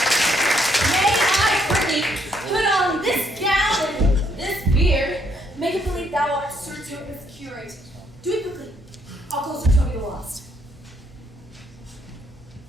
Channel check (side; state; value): both; normal; correlation 0.71